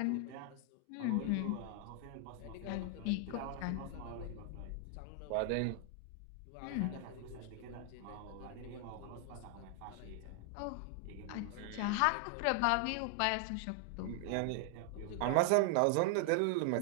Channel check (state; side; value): different; both; correlation 0.00